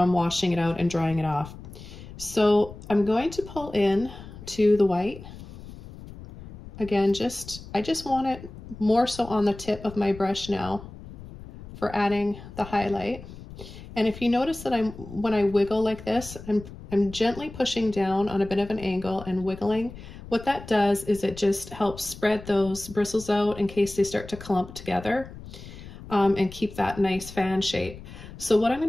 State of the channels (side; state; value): left; noise; rumble, 15 dB below the sound